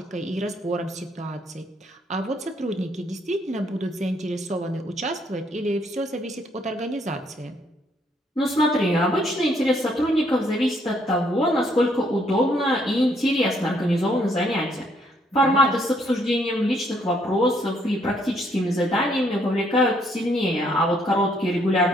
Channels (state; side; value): normal; both; correlation 0.69